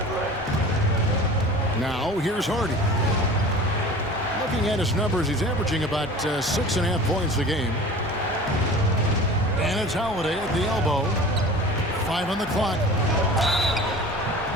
Now, here's Hardy. Looking at his numbers, he's averaging about 6.5 points a game. And it's Holiday at the elbow. 5 on the clock.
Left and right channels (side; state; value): both; normal; correlation 0.39